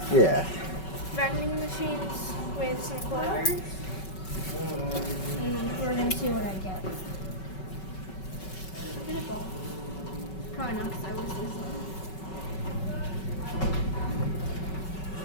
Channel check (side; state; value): right; late; 5.3 ms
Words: Yeah. Vending machines with some quarters. We're going to see what I get. I'll get a ball. Probably not because I was this one.